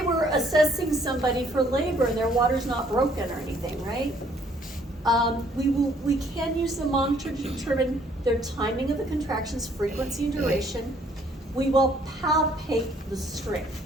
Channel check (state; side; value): normal; both; correlation 0.63